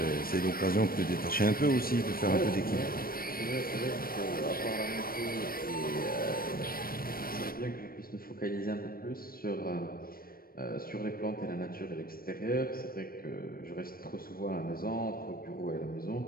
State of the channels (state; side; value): late; right; 0.43 ms